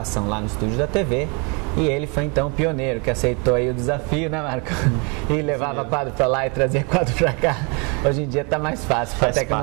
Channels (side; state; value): left; quieter; 32.5 dB